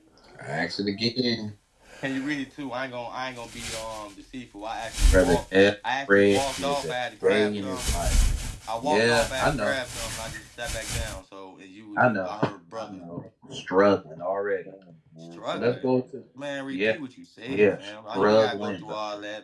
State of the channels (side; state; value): both; identical; correlation 1.00